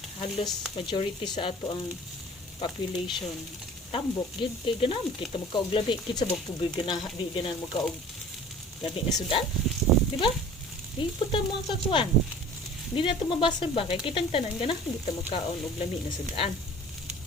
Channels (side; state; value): both; normal; correlation 0.45